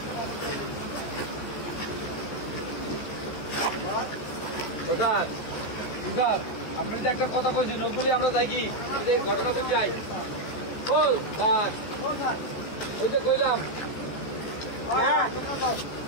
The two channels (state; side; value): late; right; 14 ms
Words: প্রসাদ প্রসাদ আপনার যে একটা কথা কইছেন ওগুলি আমরা যাই কি ঘটনা বুঝ যাই। ও স্যার ওই যে কইলাম